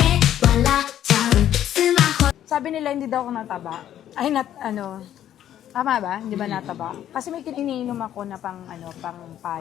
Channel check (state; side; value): quieter; right; 11.2 dB